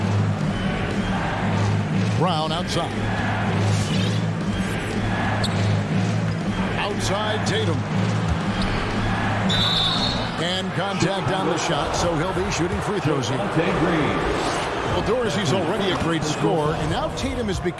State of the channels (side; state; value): both; identical; correlation 1.00